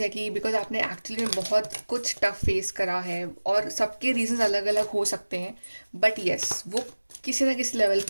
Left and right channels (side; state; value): both; inverted; correlation -1.00